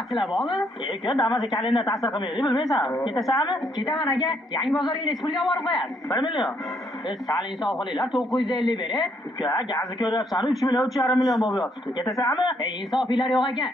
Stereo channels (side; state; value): both; normal; correlation 0.71